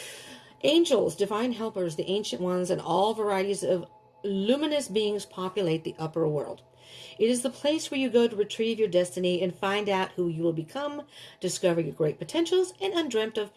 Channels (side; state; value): both; identical; correlation 1.00